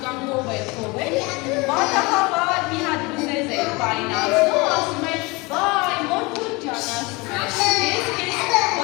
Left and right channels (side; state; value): right; quieter; 25.4 dB